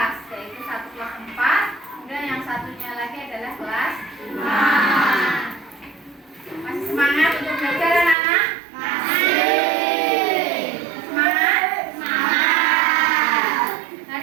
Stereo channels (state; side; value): drops out; left; at 8.2 s